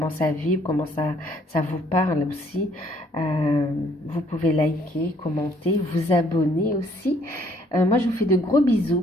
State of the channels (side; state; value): both; normal; correlation 0.64